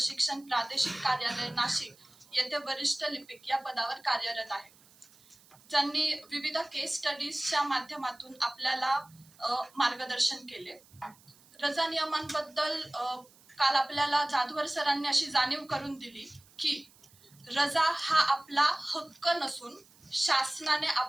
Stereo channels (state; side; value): noise; right; hiss, 27 dB below the sound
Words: प्रादेशिक कार्यालय नाशिक येथे वरिष्ठ लिपिक या पदावर कार्यरत आहे। ज्यांनी विविध केस स्टडीजच्या माध्यमातून आपल्याला मार्गदर्शन केले। रजा नियमांबद्दल काल आपल्याला जाधवर सरांनी अशी जाणीव करून दिली की रजा हा आपला हक्क नसून शासनाने